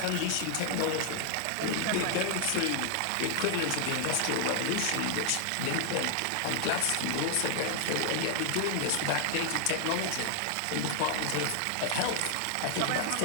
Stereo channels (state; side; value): different; both; correlation 0.00